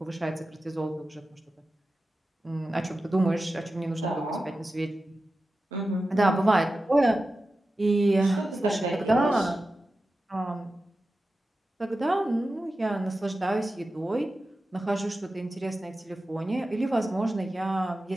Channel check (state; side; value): normal; both; correlation 0.93